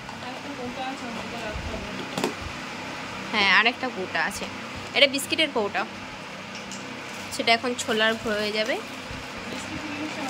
হ্যাঁ আরেকটা কৌটা আছে, এটা বিস্কিটের কৌটা, সেটা এখন ছোলার হয়ে যাবে।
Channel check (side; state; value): both; identical; correlation 1.00